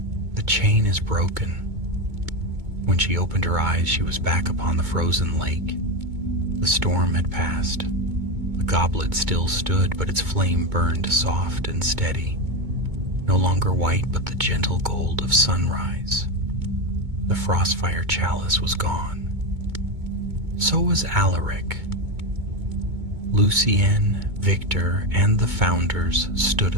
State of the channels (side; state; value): left; late; 2.2 ms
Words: The chain is broken. When she opened her eyes, she was back upon the frozen lake. The storm had passed. The goblet still stood, but its flame burned soft and steady. No longer white, but the gentle gold of sunrise. The frostfire chalice was gone. So was Alaric. Lucien, Victor, and the Founders stood